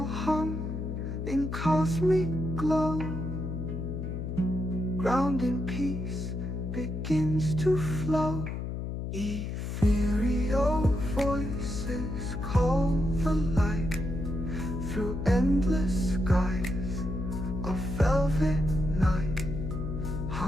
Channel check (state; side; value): noise; left; hum, 4 dB below the sound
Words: hum in cosmic glow. Grounding peace begins to flow. Ethereal voices call the light through endless skies of velvet night.